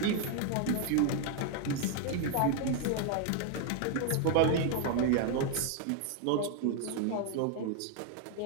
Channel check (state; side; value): different; both; correlation 0.00